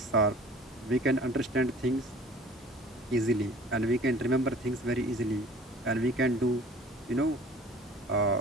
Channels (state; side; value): normal; both; correlation 0.48